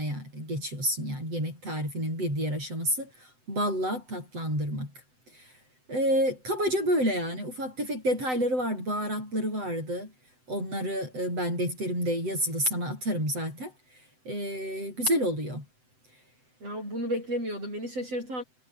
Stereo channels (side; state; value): left; late; 7.9 ms